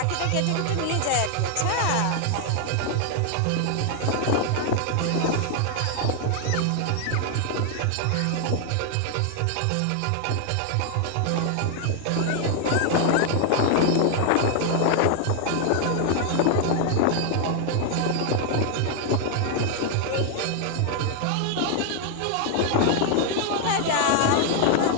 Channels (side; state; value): both; different; correlation 0.00